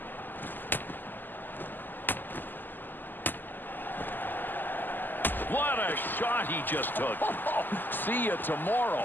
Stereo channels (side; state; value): right; late; 0.089 ms